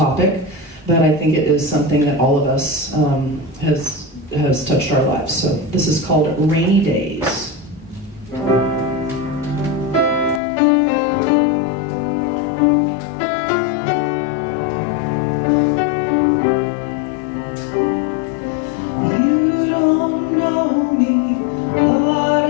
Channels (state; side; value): drops out; right; at 10.4 s